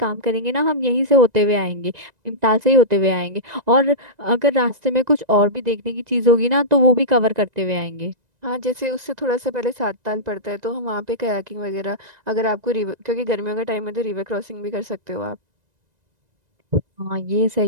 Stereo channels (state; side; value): late; left; 1.9 ms